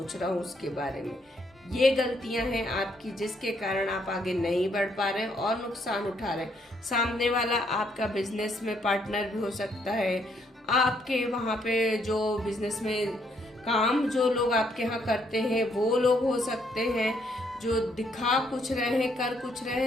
रहा हूँ उसके बारे में। ये गलतियां हैं आपकी, जिसके कारण आप आगे नहीं बढ़ पा रहे हैं और नुकसान उठा रहे हैं। सामने वाला आपका बिजनेस में पार्टनर भी हो सकता है, आपके वहां पे जो बिजनेस में काम जो लोग आपके यहाँ करते हैं वो लोग हो सकते हैं, जो दिखा कुछ रहे हैं, कर कुछ रहे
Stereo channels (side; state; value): both; normal; correlation 0.71